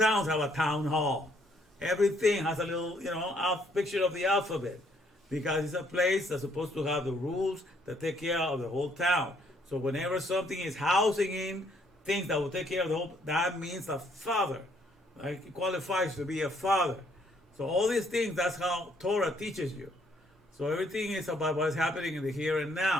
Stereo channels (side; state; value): both; normal; correlation 0.67